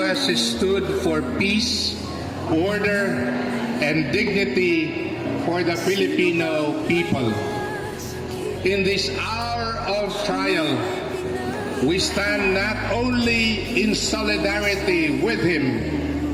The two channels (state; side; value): identical; both; correlation 1.00